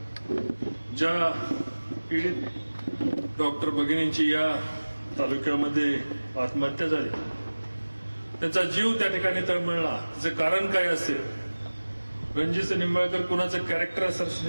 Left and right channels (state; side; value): inverted; both; correlation -1.00